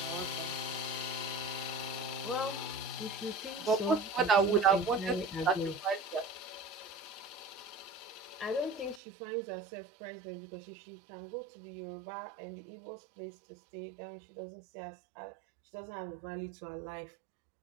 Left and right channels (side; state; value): left; drops out; at 9.0 s